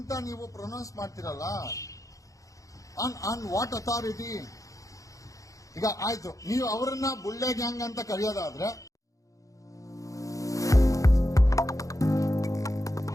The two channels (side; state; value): right; late; 0.16 ms